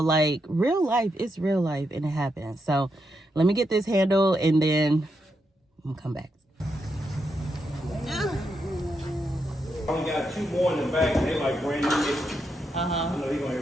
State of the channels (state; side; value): normal; both; correlation 0.82